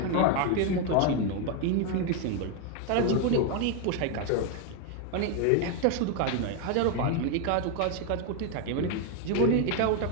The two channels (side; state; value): both; different; correlation 0.01